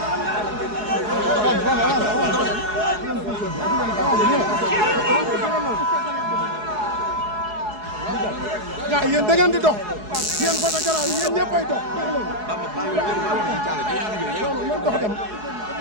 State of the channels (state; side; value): late; left; 4.7 ms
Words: gaa yéen da ngeen di dox yéen photographe yi yéen ñëppay dox dox dox dem